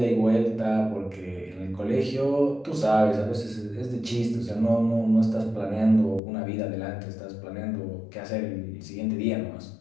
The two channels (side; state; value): right; drops out; at 6.2 s